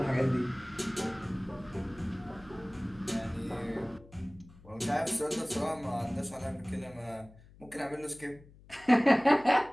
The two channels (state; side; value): noise; left; hum, 23 dB below the sound